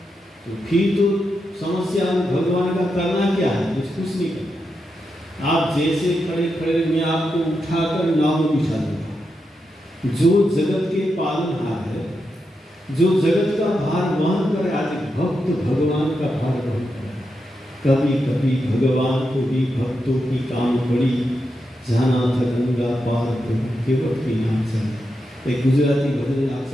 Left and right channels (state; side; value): normal; both; correlation 0.86